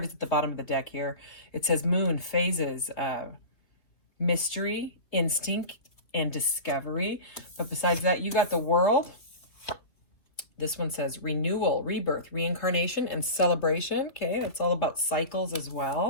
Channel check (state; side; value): late; right; 3.2 ms